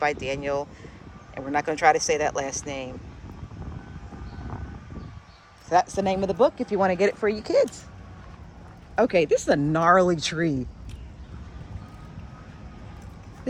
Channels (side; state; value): both; identical; correlation 1.00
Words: Daniel, and we're not going to try to say that last name. So that's the name of the book if you want to get it for your kids. Okay, this is a gnarly tree.